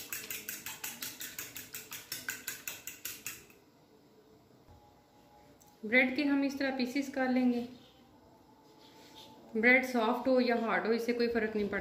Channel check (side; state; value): both; identical; correlation 1.00